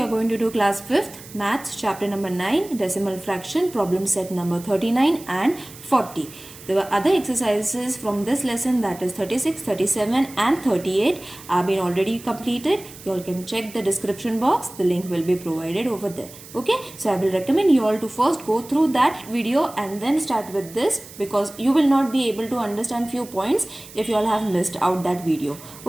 going to do class 5th maths chapter number 9 decimal fraction problem set number 39 and 40. The other exercises from this lesson, that is 36, 37 and 38, have been already completed. You all can check the description box, the link will be provided over there. Okay, so I will recommend you all to first go through that video and then start with this, because you will not be able to understand few points if you all have missed out that video.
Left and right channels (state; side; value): noise; right; hiss, 18 dB below the sound